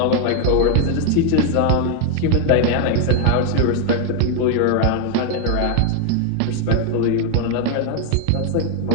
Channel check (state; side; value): different; both; correlation 0.00